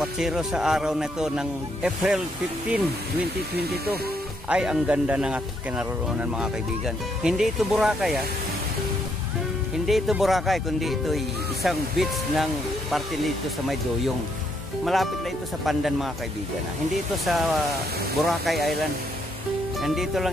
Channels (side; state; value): both; normal; correlation 0.74